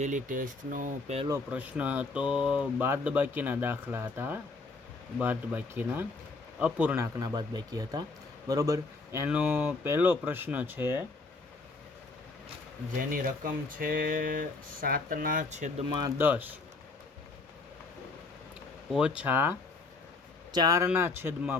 ટેસ્ટનો પહેલો પ્રશ્ન હતો બાદબાકીના દાખલા હતા. બાદબાકીના અપૂર્ણાંકના બાદબાકી હતા, બરાબર. એનો પહેલો પ્રશ્ન છે જેની રકમ છે 7/10 ઓછા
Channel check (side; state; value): right; quieter; 3.7 dB